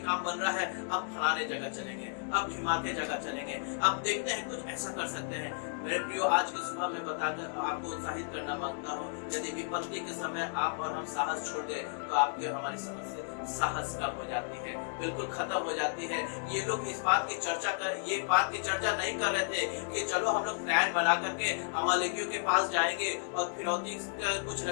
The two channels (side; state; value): right; silent; digital silence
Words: काम बन रहा है, अब फलाने जगह चलेंगे, अब ढिमाके जगह चलेंगे, अब देखते हैं कुछ ऐसा कर सकते हैं। मेरे प्रियो, आज की सुबह में बताकर आपको उत्साहित करना मांगता हूँ, यदि विपत्ति के समय आप और हम साहस छोड़ दें तो आपकी और हमारी समस्या साहस कम हो जाती है, बिल्कुल खत्म हो जाती है। ये लोग इस बात की चर्चा नहीं कर रहे थे कि चलो हम लोग प्लान बना करके अमालेकियों के पास जाएंगे और फिरौती कुछ